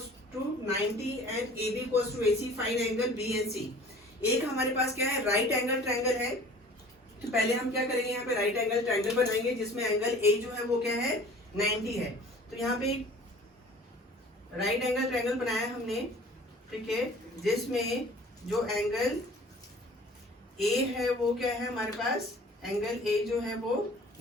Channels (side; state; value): both; normal; correlation 0.47